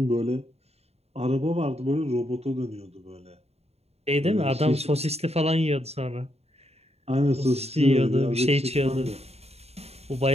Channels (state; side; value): late; left; 0.30 ms